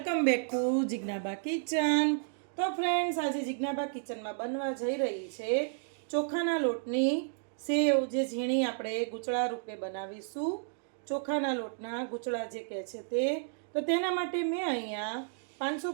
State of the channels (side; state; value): left; silent; digital silence